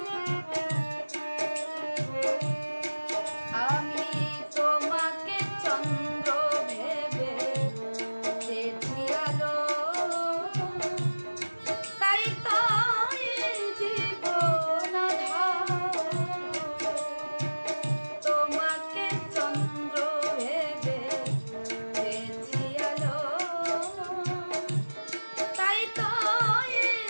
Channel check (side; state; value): both; inverted; correlation -1.00